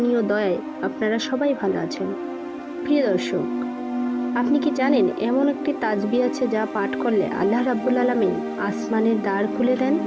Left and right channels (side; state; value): both; identical; correlation 1.00